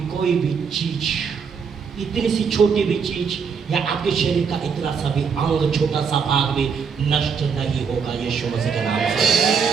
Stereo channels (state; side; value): quieter; left; 6.1 dB